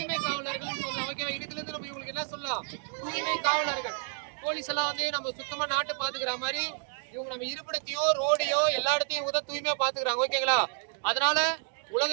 காவலர்கள் சொல்லலாம். ஓகேவா? இதுல இருந்து நம்ம இவங்களுக்கு என்ன சொல்லலாம்? தூய்மை காவலர்கள். போலீஸ் எல்லாம் வந்து நம்ம சுத்தமா நாட்டை பாத்துக்கிற மாதிரி இவங்க நம்ம இருப்பிடத்தையோ ரோடையோ எல்லா இடத்தையும் இவங்க தான் தூய்மையா பாத்துக்கிறாங்க. ஓகேங்களா? அதனால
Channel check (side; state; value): left; silent; 58 dB below the other